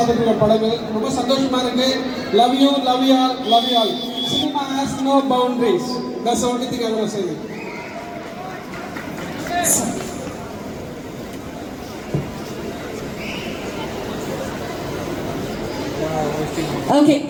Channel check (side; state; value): both; identical; correlation 1.00